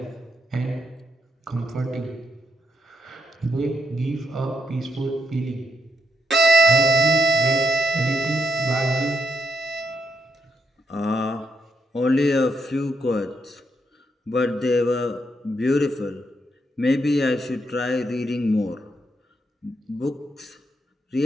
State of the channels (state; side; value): normal; both; correlation 0.78